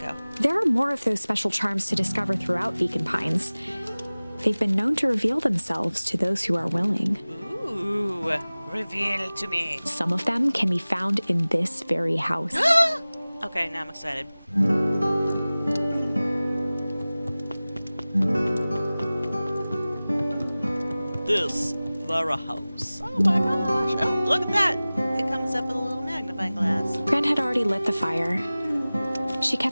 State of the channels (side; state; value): both; inverted; correlation -0.98